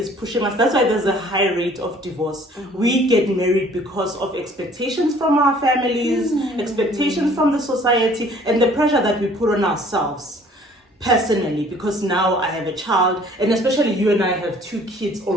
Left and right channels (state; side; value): normal; both; correlation 0.55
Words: pushing us. That's why there's a high rate of divorce. We get married because of expectations from our families, expectations from the society, and the pressure that we put on ourselves personally, because now I have a child, and especially you and I have 2 kids